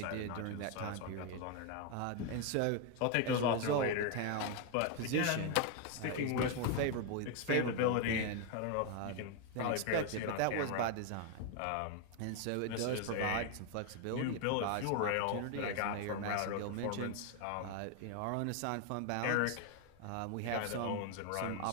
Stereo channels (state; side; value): different; both; correlation 0.01